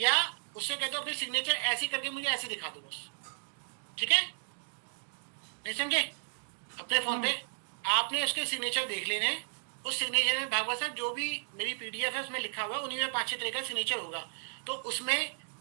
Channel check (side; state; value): left; silent; digital silence